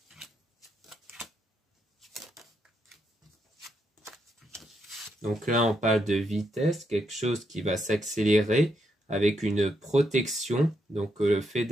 Donc là, on parle de vitesse, quelque chose qui va s'accélérer avec une protection. Donc le fait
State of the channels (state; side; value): normal; both; correlation 0.79